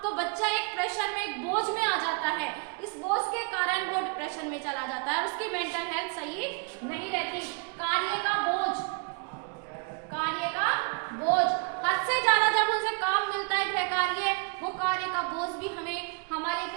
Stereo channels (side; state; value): left; quieter; 36.2 dB